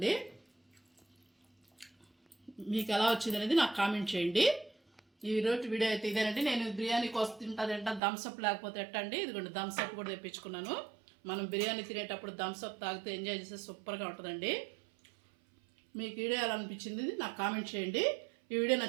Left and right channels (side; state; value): left; drops out; at 8.0 s